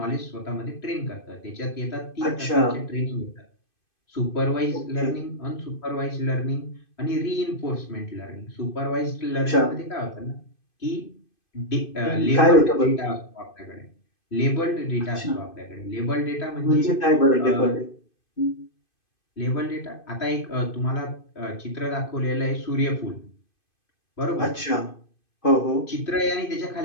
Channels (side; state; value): right; late; 2.5 ms